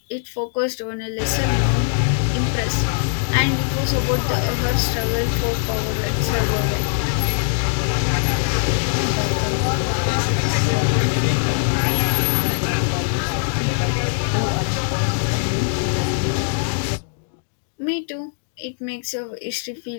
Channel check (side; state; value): right; silent; digital silence